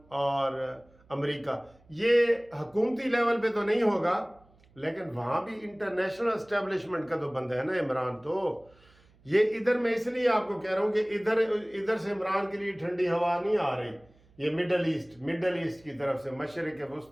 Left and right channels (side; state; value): right; noise; hum, 30 dB below the sound